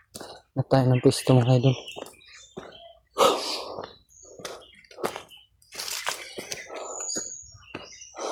Na tayo ng pwesto mga idol.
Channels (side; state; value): both; identical; correlation 1.00